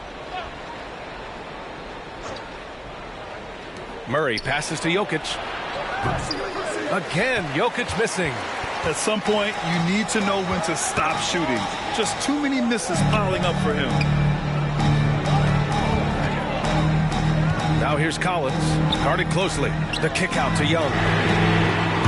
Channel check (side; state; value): both; identical; correlation 1.00